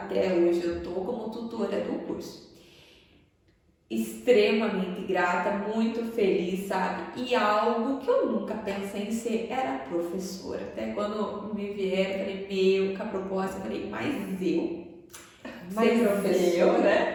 hoje eu estou como tutora do curso. Extremamente grata, muito feliz, sabe? E algo que eu nunca pensei em ser era professora. Até quando me vieram, falei, com a proposta, eu falei, mas ser professora,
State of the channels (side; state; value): both; identical; correlation 1.00